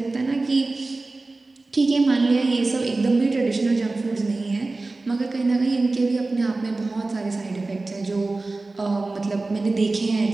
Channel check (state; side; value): quieter; left; 3.3 dB